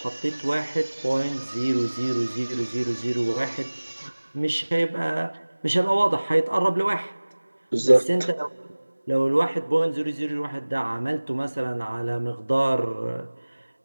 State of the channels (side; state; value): both; inverted; correlation -1.00